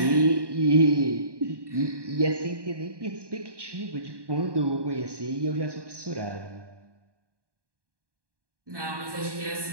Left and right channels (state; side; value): late; left; 1.2 ms